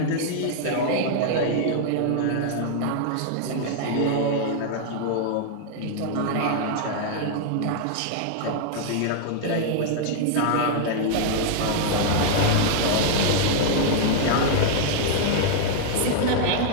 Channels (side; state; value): both; different; correlation -0.01